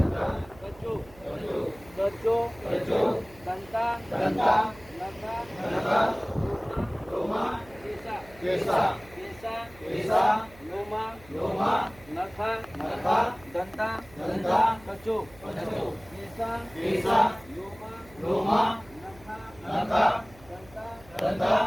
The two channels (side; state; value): right; noise; hum, 23 dB below the sound